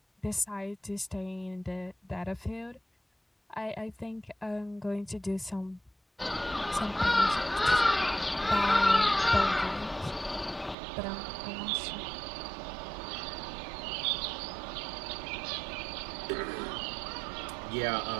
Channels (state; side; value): drops out; left; at 10.8 s